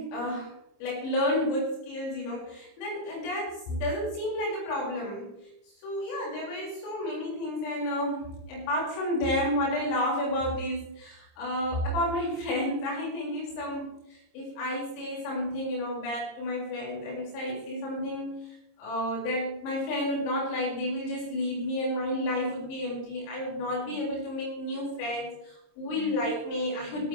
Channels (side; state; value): right; late; 26 ms